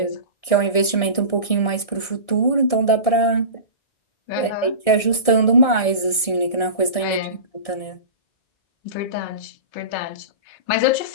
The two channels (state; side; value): late; right; 1.6 ms